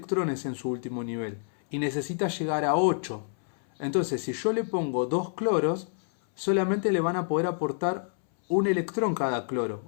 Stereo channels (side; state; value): right; silent; 59 dB below the other